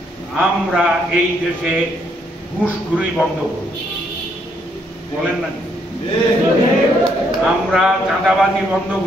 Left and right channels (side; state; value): both; normal; correlation 0.72